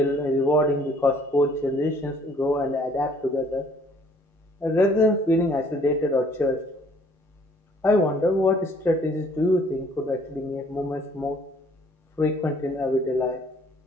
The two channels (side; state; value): both; normal; correlation 0.59